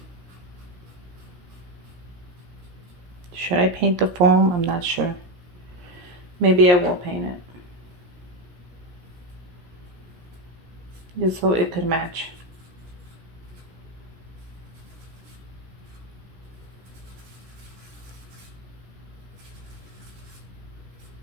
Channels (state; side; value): late; left; 17 ms